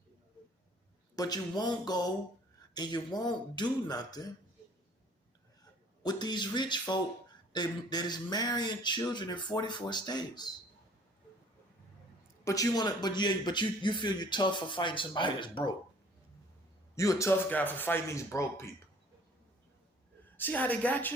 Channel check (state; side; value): normal; both; correlation 0.54